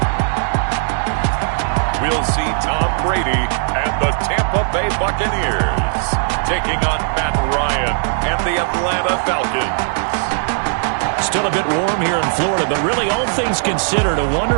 We'll see Tom Brady and the Tampa Bay Buccaneers taking on Matt Ryan and the Atlanta Falcons. Still a bit warm here in Florida, but really all things considered, a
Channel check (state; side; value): silent; left; 62 dB below the other